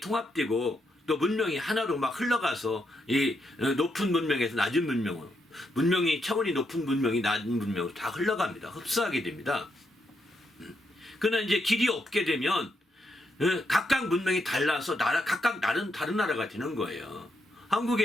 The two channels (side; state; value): both; normal; correlation 0.80